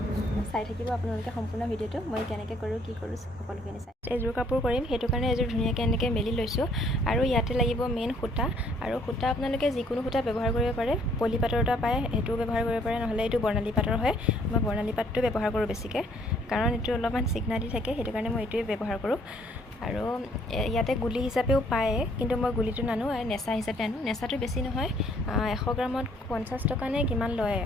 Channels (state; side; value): normal; both; correlation 0.63